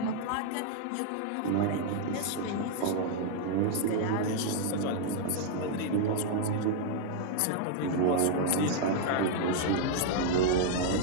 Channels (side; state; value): both; different; correlation -0.01